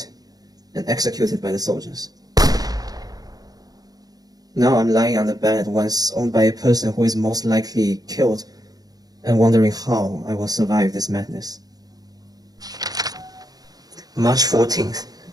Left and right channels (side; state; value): left; late; 0.19 ms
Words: and executed by the soldiers. Now I'm lying on the bed once owned by a person who is most likely killed and wondering how I will survive this madness. March 14th,